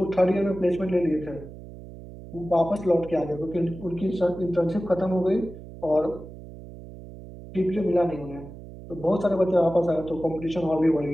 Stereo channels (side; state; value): right; noise; hum, 15 dB below the sound